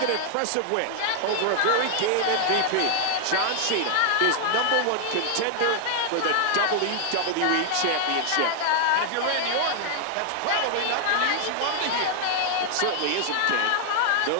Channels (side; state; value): both; different; correlation 0.00